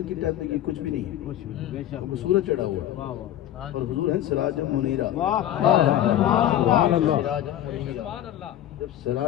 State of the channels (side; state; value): right; quieter; 12.0 dB